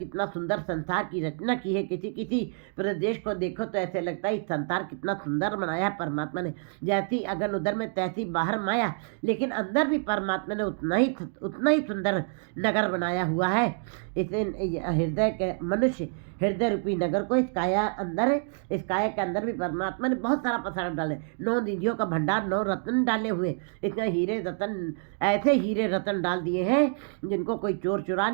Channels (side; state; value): left; silent; 59 dB below the other